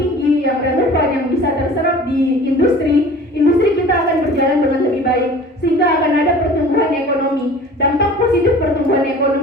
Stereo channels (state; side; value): normal; both; correlation 0.43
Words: yang relevan, yang bisa terserap di industri kita akan berjalan dengan lebih baik, sehingga akan ada pertumbuhan ekonomi. Dampak positif pertumbuhan